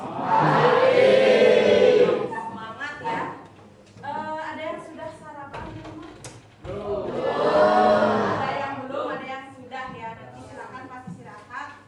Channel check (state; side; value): identical; both; correlation 1.00